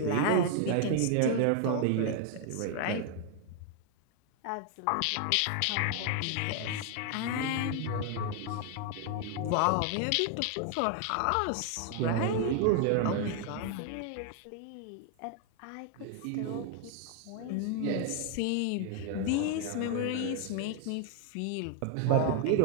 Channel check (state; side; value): different; both; correlation 0.00